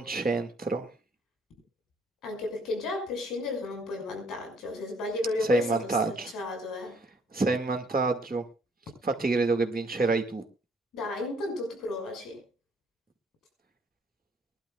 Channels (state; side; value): normal; both; correlation 0.64